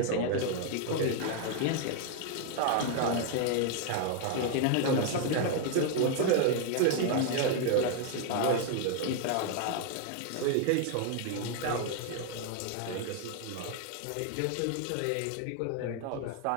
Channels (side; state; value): both; different; correlation 0.00